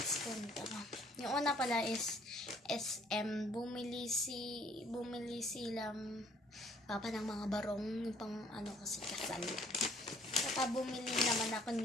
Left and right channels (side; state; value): both; normal; correlation 0.60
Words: punta. Yung una pala is SM, bumili silang papa ng mga barong, yung pang ano kasi kasal. Saka bumili naman ako